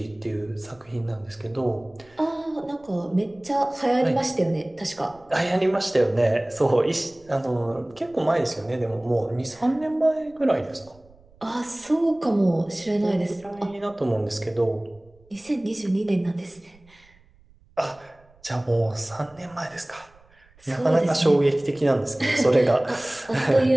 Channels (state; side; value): noise; right; rumble, 29 dB below the sound